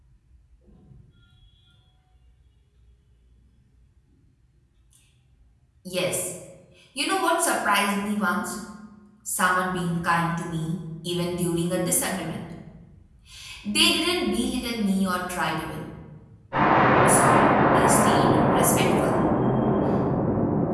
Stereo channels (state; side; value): identical; both; correlation 1.00